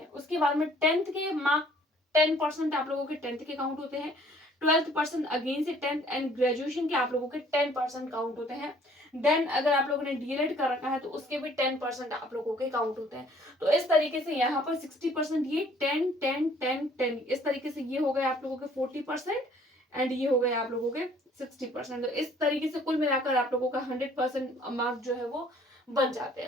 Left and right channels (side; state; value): both; normal; correlation 0.58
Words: उसके बाद में 10th के मार्क 10% आप लोगों के 10th के काउंट होते हैं, 12% अगेन से 10th, एंड ग्रेजुएशन के आप लोगों के 10% काउंट होते हैं। देन अगर आप लोगों ने डीएलएड कर रखा है तो उसके भी 10% आप लोगों के काउंट होते हैं। तो इस तरीके से यहाँ पर 60% ये 10 10 10 10 इस तरीके से ये हो गए आप लोगों के 40%, एंड ये हो गए आप लोगों के 60%। तो इस तरीके से कुल मिलाकर आप लोगों का 100% मार्क जो है वो बन जाते